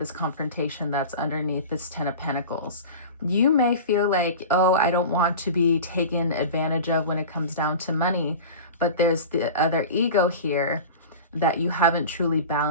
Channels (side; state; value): both; inverted; correlation -0.34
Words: confrontation that's underneath this 10 of Pentacles. You may feel like, oh, I don't want to be taken advantage of when it comes down to money, but there's the other ego here that you haven't truly